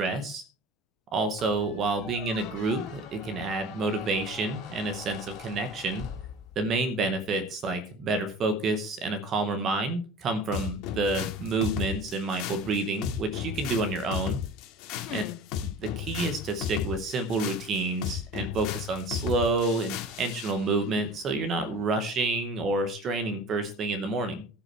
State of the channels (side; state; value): both; normal; correlation 0.39